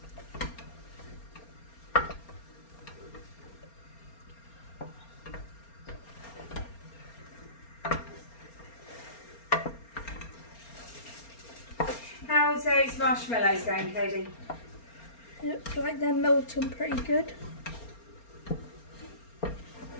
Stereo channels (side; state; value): right; late; 4.3 ms